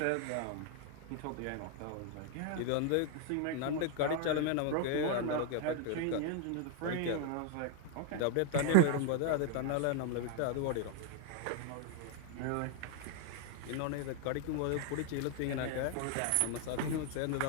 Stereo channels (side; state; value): both; different; correlation 0.00